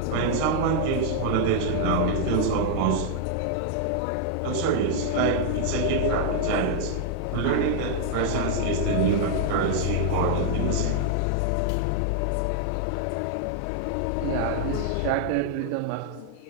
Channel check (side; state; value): both; different; correlation 0.00